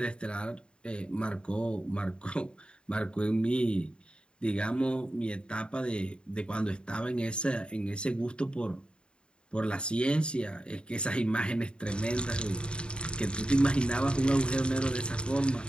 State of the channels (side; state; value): right; late; 0.052 ms